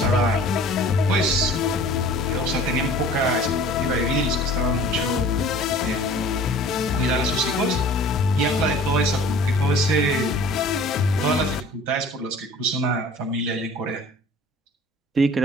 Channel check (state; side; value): normal; both; correlation 0.46